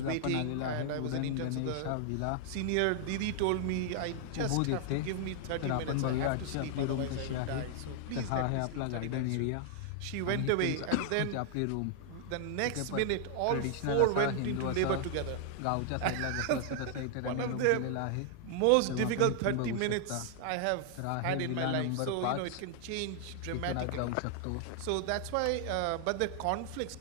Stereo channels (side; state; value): both; different; correlation 0.00